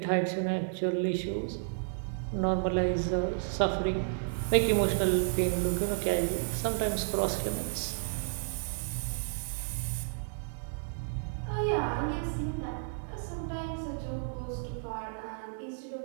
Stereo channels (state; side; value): silent; left; digital silence